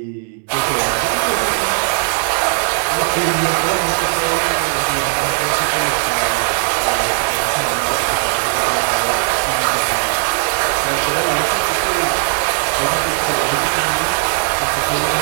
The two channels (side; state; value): left; silent; 68 dB below the other